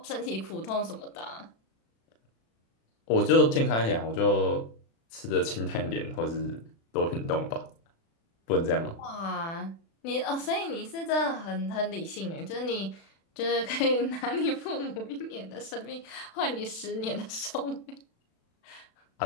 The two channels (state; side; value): late; right; 36 ms